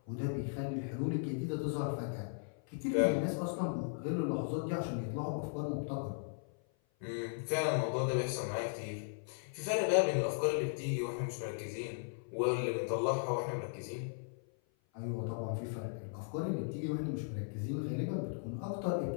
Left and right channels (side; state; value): right; silent; 53 dB below the other